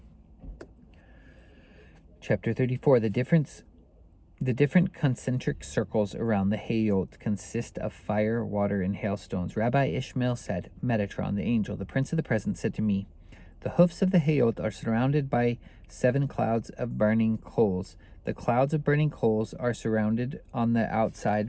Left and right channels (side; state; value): both; identical; correlation 1.00